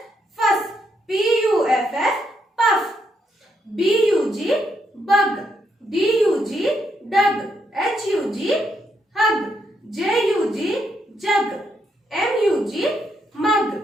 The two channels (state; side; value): normal; both; correlation 0.77